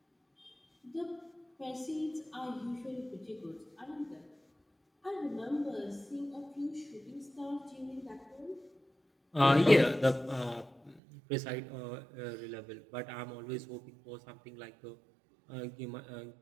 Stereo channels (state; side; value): drops out; left; at 11.0 s